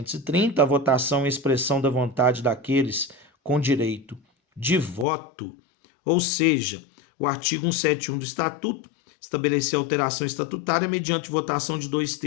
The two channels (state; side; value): drops out; right; at 5.1 s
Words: a votação é expressão da vontade daqueles com direito de voto, ou seja, o artigo 171 do Estatuto estabelecer alteração estatutária mediante votação de